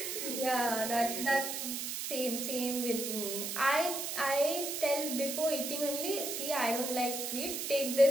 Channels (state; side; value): noise; right; hiss, 4 dB below the sound